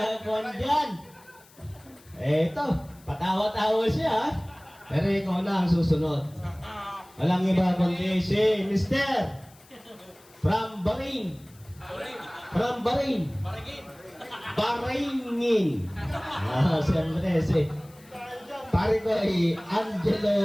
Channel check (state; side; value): noise; left; hiss, 26 dB below the sound